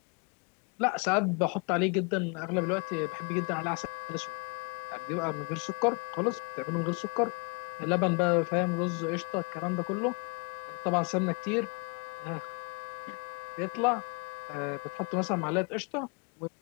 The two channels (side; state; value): right; quieter; 32.7 dB